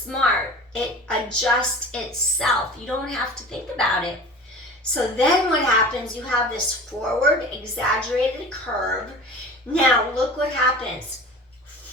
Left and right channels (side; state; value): both; normal; correlation 0.37